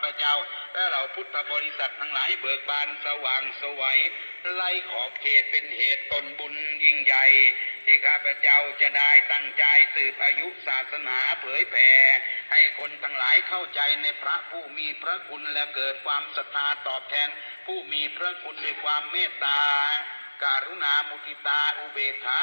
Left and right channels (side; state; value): both; inverted; correlation -1.00